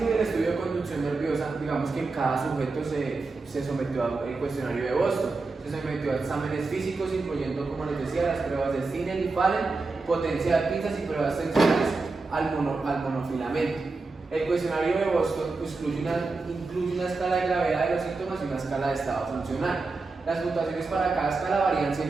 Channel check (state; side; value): quieter; left; 3.8 dB